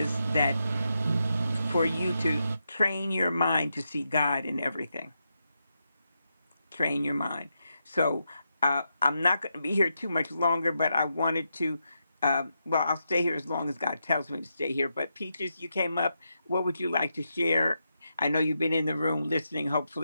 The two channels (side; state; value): both; inverted; correlation -0.84